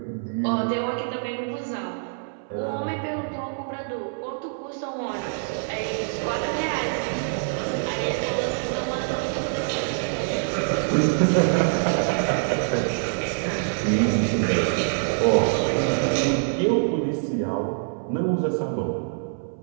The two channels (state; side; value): silent; left; 62 dB below the other